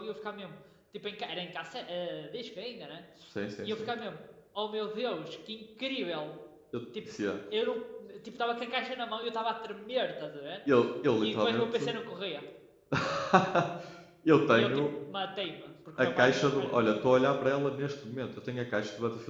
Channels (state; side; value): identical; both; correlation 1.00